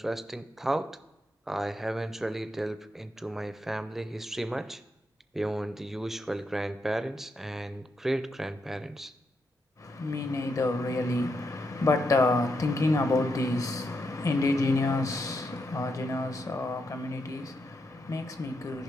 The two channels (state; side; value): normal; both; correlation 0.82